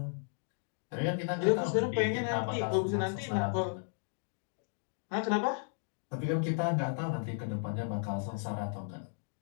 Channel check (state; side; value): silent; right; digital silence